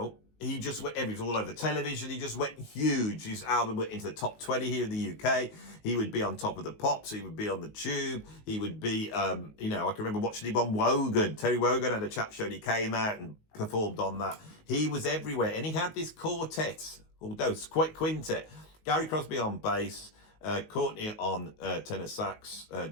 he just went, he was all over the television. He just went huge. His album went into the top 20 here in the UK. He would be on Top of the Pops. He would be on the Tube. He would be, you know, I can remember watching him on Wogan. Terry Wogan had a chat show and he came out and performed on that. He was everywhere. And he had this quartet, although it's quite quintet. Gary Crosby on bass, Courtney on tenor sax,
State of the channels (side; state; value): right; late; 19 ms